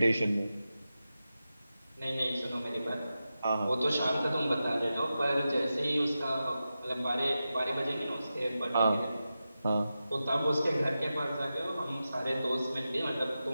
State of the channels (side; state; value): both; inverted; correlation -0.92